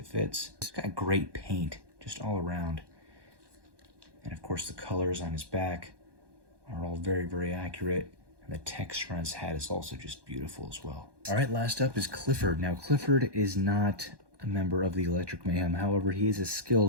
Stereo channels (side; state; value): left; late; 1.2 ms